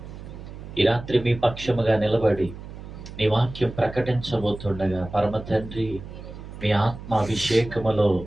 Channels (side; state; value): right; noise; hum, 13 dB below the sound